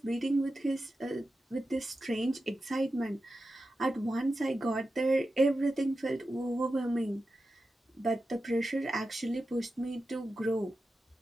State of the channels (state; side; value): normal; both; correlation 0.92